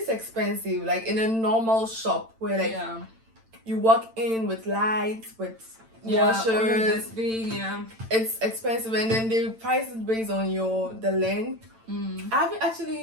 expensive, like in a normal shop where like you walk in with lights, with washers, it's expensive, and then they price it based on the length. Have you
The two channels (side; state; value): left; late; 8.9 ms